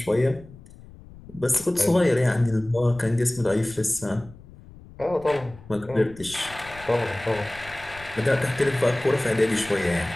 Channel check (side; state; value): left; noise; rumble, 20 dB below the sound